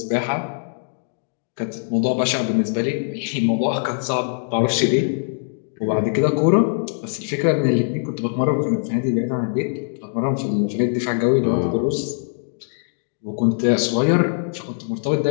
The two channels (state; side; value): silent; right; digital silence